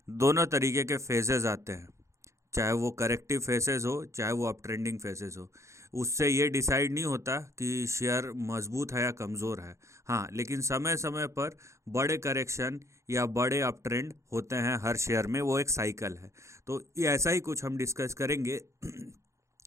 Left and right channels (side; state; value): left; late; 0.14 ms